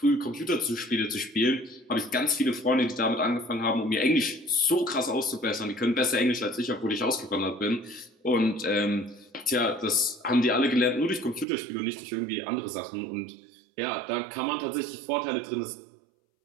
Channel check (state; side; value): drops out; left; at 11.5 s